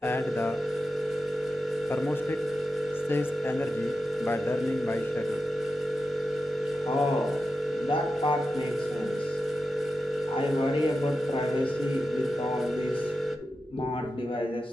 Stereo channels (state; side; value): normal; both; correlation 0.90